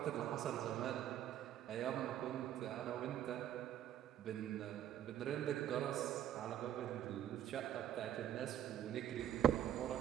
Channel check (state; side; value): quieter; left; 10.8 dB